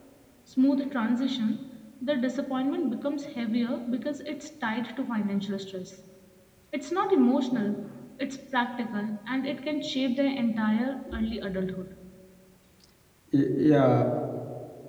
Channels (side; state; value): both; identical; correlation 1.00